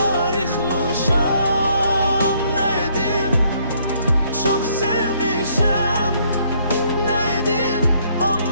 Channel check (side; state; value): both; inverted; correlation -0.67